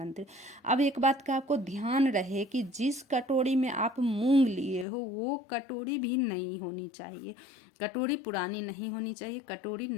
अब एक बात का आपको ध्यान रहे कि जिस कटोरी में आप मूंग लिए हो वो कटोरी भी नई होनी चाहिए। कटोरी पुरानी नहीं होनी चाहिए, कटोरी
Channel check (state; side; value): drops out; right; at 4.9 s